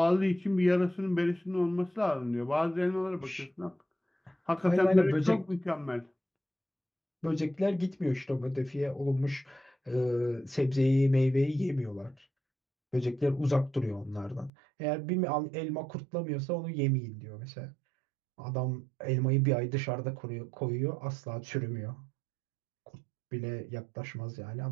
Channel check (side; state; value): left; drops out; at 14.5 s